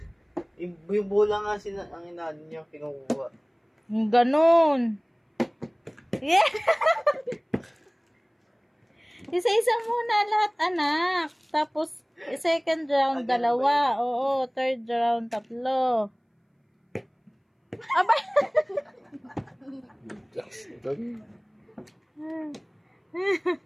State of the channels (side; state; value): both; identical; correlation 1.00